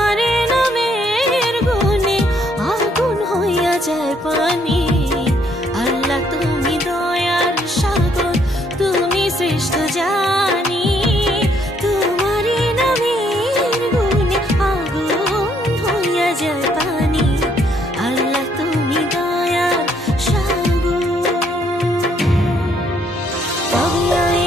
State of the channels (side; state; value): both; normal; correlation 0.69